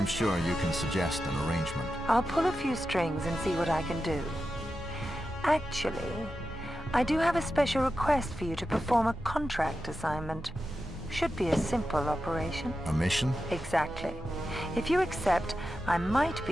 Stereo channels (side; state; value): both; normal; correlation 0.90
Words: sure you can suggest an arrangement. I'll pull a few strings and see what I can do. Actually, I do have a special request for you to perform a contract assignment. Should be a simple operation. A mission? Exactly. If you accept, I might